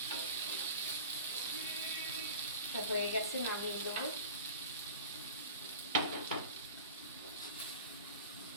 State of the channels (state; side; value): inverted; both; correlation -0.37